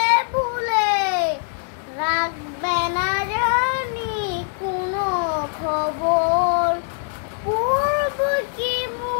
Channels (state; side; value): silent; right; 62 dB below the other